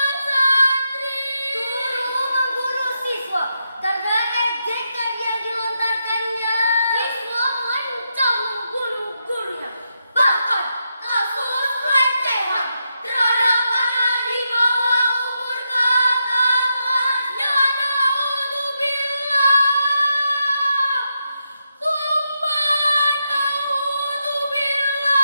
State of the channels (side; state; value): both; inverted; correlation -0.84